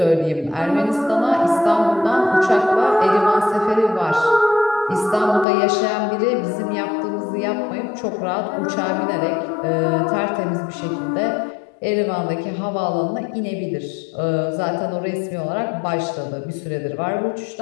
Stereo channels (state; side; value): drops out; right; at 5.5 s